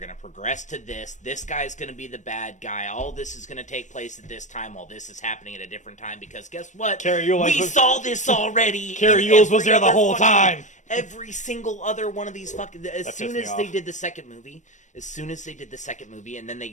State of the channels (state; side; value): late; right; 0.35 ms